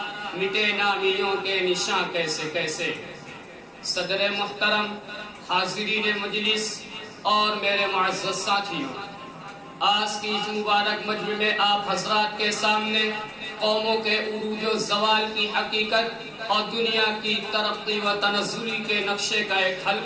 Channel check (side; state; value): both; identical; correlation 1.00